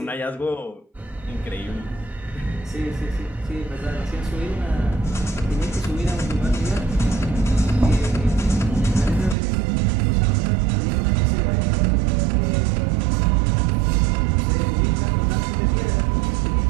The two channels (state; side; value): drops out; left; at 9.3 s